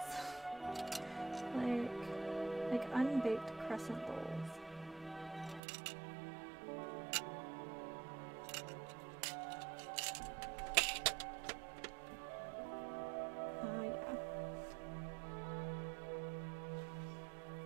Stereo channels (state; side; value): drops out; left; at 5.6 s